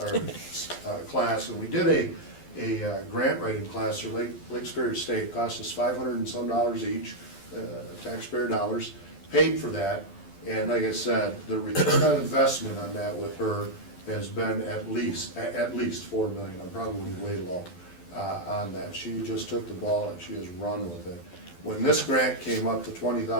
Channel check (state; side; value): late; right; 12 ms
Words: And we did a grant writing class for Lake Superior State. It cost us $500 and some each, taxpayer dollars, paid for that. And like I said, the return on investment on that with her has been at least 4 million. I'm probably way low on that. She just took the ball and she has run with it. When this grant came up to